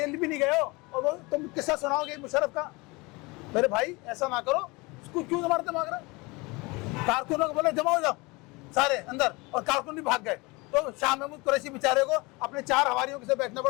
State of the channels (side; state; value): right; quieter; 25.1 dB